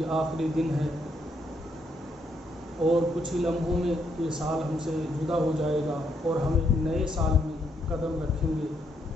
آخری دن ہے اور کچھ ہی لمحوں میں یہ سال ہم سے جدا ہو جائے گا اور ہم ایک نئے سال میں قدم رکھیں گے۔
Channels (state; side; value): normal; both; correlation 0.75